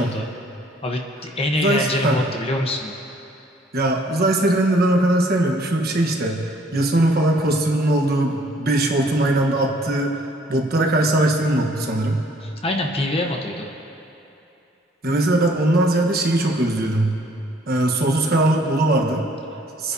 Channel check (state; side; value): normal; both; correlation 0.61